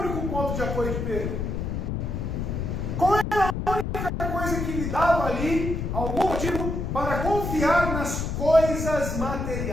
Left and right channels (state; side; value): noise; left; rumble, 3 dB below the sound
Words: ponto de apoio de Pedro? Qual era a única coisa que lhe dava ali algum motivo para confiar nas coisas